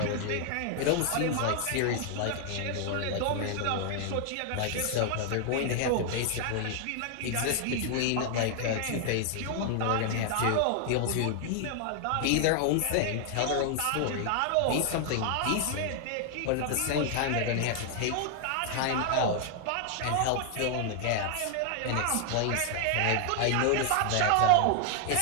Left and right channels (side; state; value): both; different; correlation 0.00